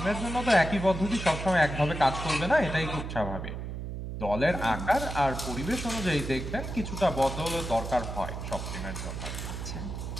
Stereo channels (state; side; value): noise; right; hum, 6 dB below the sound